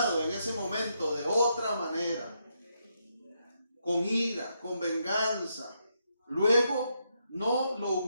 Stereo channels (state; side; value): inverted; both; correlation -0.80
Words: en ese momento de otra manera, con ira, con venganza, luego no le